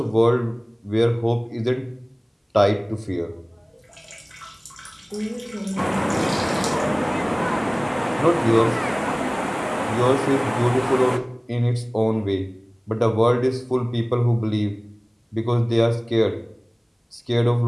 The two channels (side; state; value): both; identical; correlation 1.00